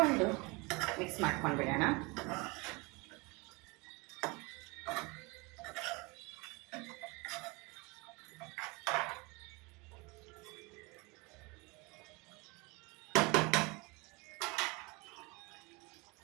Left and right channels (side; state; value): left; quieter; 26.6 dB